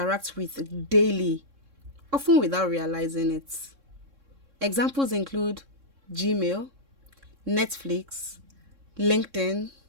with daily, often without realizing it. Examples include Gmail, Netflix, LinkedIn,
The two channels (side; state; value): left; late; 3.6 ms